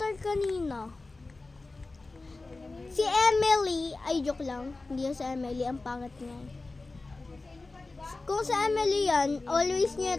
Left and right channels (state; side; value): quieter; right; 3.4 dB